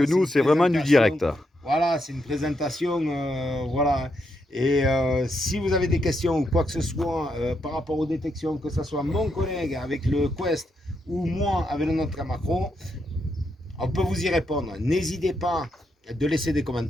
c'est nous, une c'est vraiment du présentation, direct. voilà, c'est une présentation, voilà. Et si vous avez des questions ou quoi que ce soit par rapport aux détections, que ce soit mon collègue avec le Quest ou moi avec le notre Macron, on peut vous y répondre. N'hésitez pas de laisser des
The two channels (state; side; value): normal; both; correlation 0.81